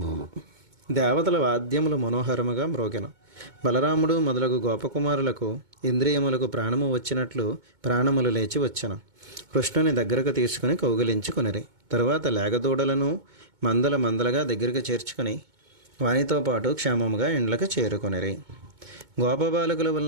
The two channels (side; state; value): left; late; 2.2 ms